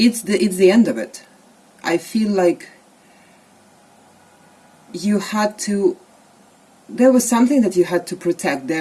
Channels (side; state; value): both; identical; correlation 1.00